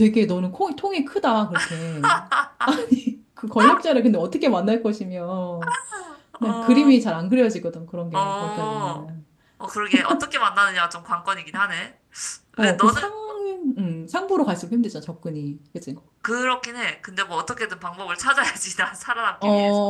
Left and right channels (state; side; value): identical; both; correlation 1.00